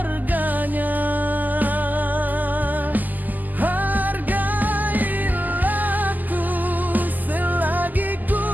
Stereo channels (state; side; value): late; left; 0.084 ms